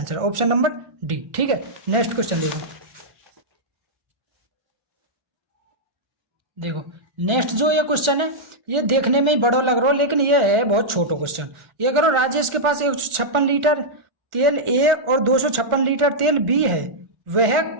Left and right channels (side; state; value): left; late; 1.4 ms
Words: option number D. ठीक है, नेक्स्ट क्वेश्चन देखो नेक्स्ट जो ये क्वेश्चन है ये देखने में ही बड़ा लग रहा हो, लेकिन ये है बहुत छोटा क्वेश्चन। ये करो राजेश के पास 156 लीटर तेल ए और 256 लीटर तेल बी है। वह